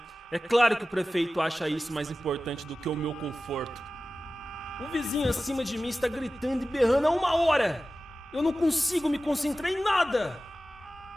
É claro que o prefeito acha isso mais importante do que o meu conforto. O vizinho acima de mim está gritando e berrando há 1 hora! Eu não consigo me concentrar em nada!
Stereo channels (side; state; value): both; normal; correlation 0.95